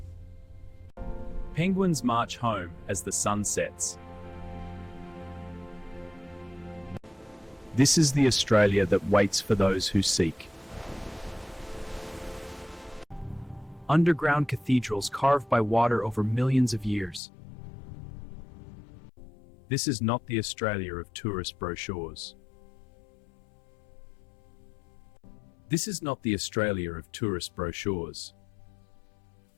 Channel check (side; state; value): right; drops out; at 17.2 s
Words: Penguins march home as the sun sets. This is the Australia that waits for those who seek. Underground cathedrals carved by water over millions of years. This is not the Australia of tourist brochures. This is not the Australia of tourist brochures.